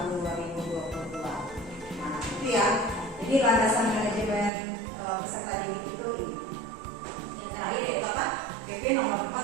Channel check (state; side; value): drops out; left; at 4.5 s